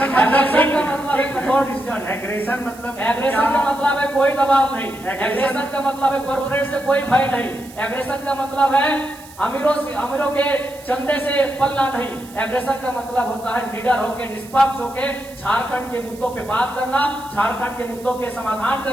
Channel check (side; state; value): right; noise; hiss, 21 dB below the sound